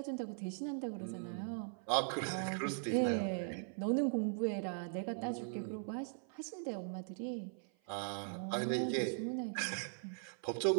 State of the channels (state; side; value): silent; left; 51 dB below the other